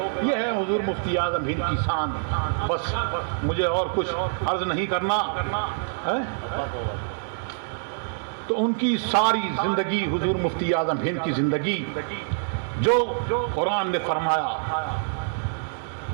یہ ہے حضور مفتی اعظم ہند کی شان. بس مجھے اور کچھ عرض نہیں کرنا ہے. تو ان کی ساری زندگی, حضور مفتی اعظم ہند کی زندگی جو قرآن نے فرمایا,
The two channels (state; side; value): silent; left; digital silence